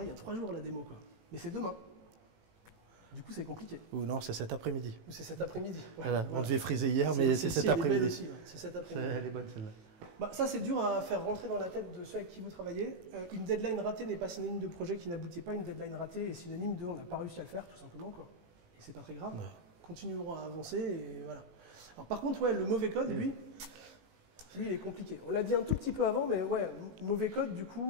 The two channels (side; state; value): left; late; 18 ms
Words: il y a 3 jours, la démo, quoi. Mais c'est demain. Du coup, c'est compliqué. Ou non, c'est cet après-midi. Ou c'est cet après-midi. Ouais, Voilà. voilà. On devait friser hier, mais c'est cet après-midi. C'est cet après-midi. Elle est bonne celle-là. Bah, ça, c'est dur à faire rentrer dans la tête de ceux avec qui vous travaillez. Une deadline ratée n'est pas synonyme de projet qui n'aboutit pas. Une deadline ratée est synonyme de on n'a pas réussi à le faire, tout simplement, quoi. Et c'est pas très grave. Ouais. Continuerons à avancer et voilà. Alors, par contre, ouais, le mauvais code, lui, il est compliqué. On l'a dit un tout petit peu avant, mais ouais, mauvais code, du